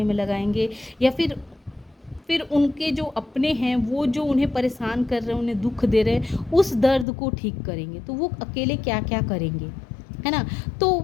में लगाएंगे, या फिर उनके जो अपने हैं, वो जो उन्हें परेशान कर रहे हैं, उन्हें दुख दे रहे हैं, उस दर्द को ठीक करेंगे। तो वो अकेले क्या क्या करेंगे, है ना। तो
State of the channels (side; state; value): right; drops out; at 7.1 s